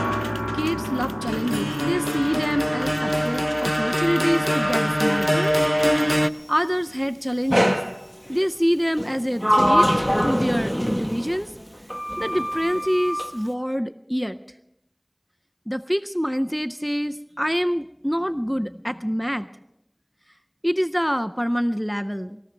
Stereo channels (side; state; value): both; identical; correlation 1.00